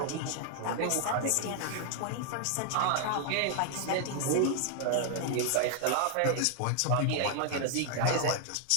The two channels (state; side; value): different; both; correlation 0.00